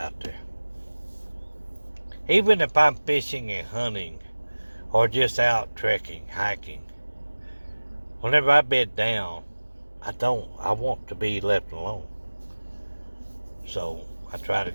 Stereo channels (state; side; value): inverted; both; correlation -1.00